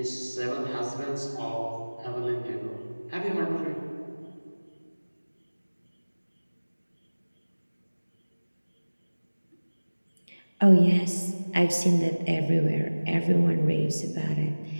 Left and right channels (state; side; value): inverted; both; correlation -1.00